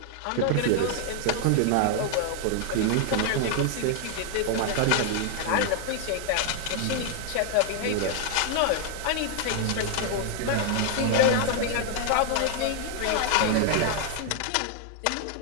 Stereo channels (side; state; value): both; different; correlation 0.00